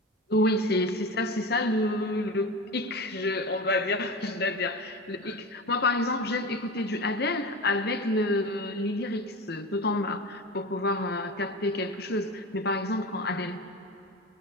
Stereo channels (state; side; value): normal; both; correlation 0.28